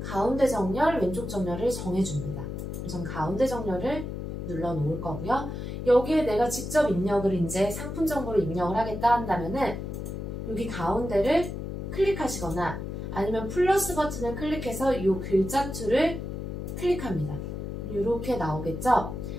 가운데 정렬, 왼쪽 정렬을 정해줍니다. 전 가운데 정렬을 눌러 놓을 거고요. 여기에 내가 직접 입력을 이제 상품 정보를 입력을 하겠다 한다면은 여기 가운데를 클릭하시거나 아니면 플러스 버튼을 클릭해서 이 글자투를 클릭합니다. 이렇게 나오겠죠?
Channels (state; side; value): noise; left; hum, 6 dB below the sound